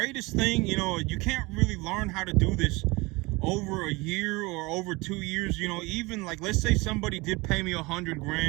thing, you know, you can't really learn how to do this over a year or over 2 years. You know, even like, let's say somebody did pay me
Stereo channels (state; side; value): quieter; left; 24.1 dB